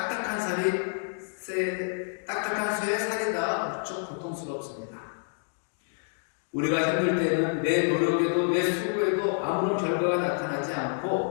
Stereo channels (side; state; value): right; silent; 59 dB below the other